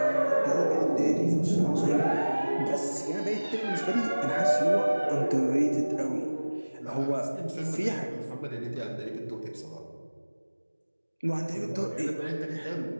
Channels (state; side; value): inverted; both; correlation -1.00